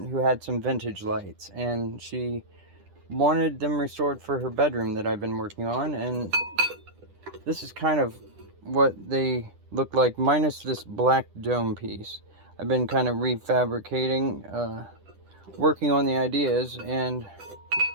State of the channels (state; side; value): late; left; 10 ms